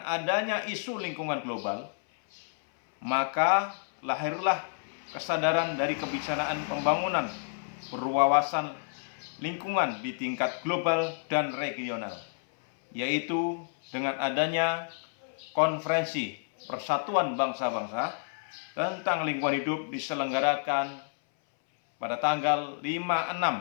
adanya isu lingkungan global, maka lahirlah kesadaran dari kebijaksanaan pembangunan berwawasan lingkungan di tingkat global dan regional, yaitu dengan adanya Konferensi Persatuan Bangsa-Bangsa tentang lingkungan hidup diselenggarakan pada tanggal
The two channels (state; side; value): silent; right; 58 dB below the other